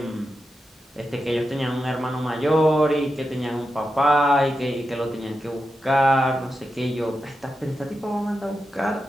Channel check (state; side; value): normal; both; correlation 0.89